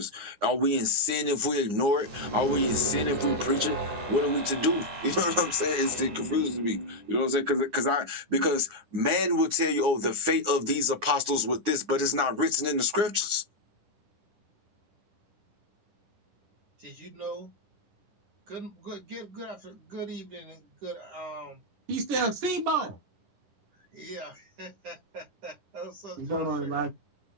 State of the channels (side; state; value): left; late; 9.7 ms